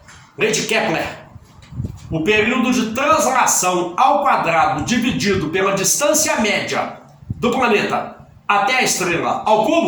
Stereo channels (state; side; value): identical; both; correlation 1.00